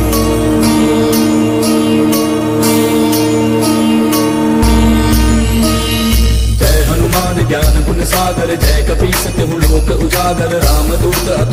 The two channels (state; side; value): identical; both; correlation 1.00